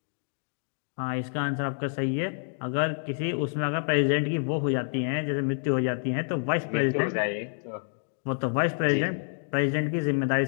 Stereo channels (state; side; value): silent; right; digital silence